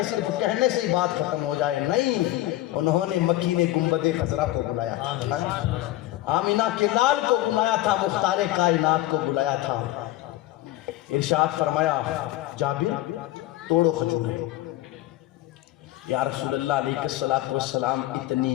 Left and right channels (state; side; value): quieter; right; 15.8 dB